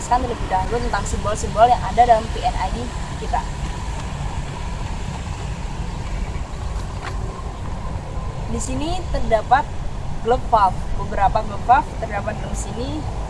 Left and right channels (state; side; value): identical; both; correlation 1.00